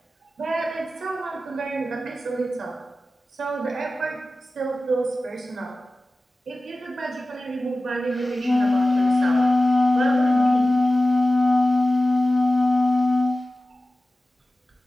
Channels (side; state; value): both; normal; correlation 0.95